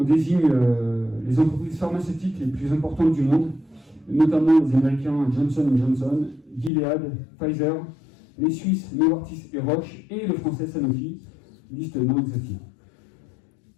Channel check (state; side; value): drops out; right; at 6.7 s